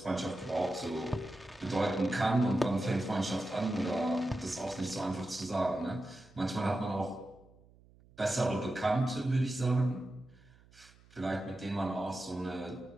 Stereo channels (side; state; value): right; noise; hum, 26 dB below the sound